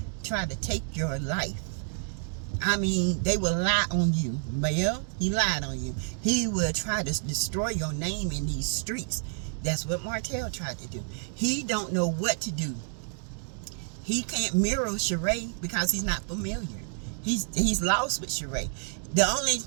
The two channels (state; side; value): silent; left; 56 dB below the other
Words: try to take your life. I mean, they will lie on you. Mel, he lied on you. He will try to destroy your name in these streets. That's what Martel tried to do. He don't know what to do. He can't mirror Shari because he's not familiar. He's lost with Shari.